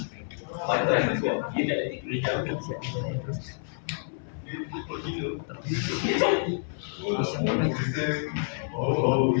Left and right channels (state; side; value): silent; right; 59 dB below the other